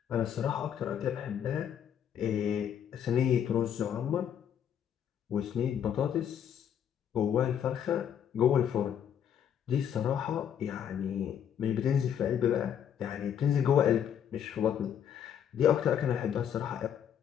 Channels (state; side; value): quieter; right; 9.0 dB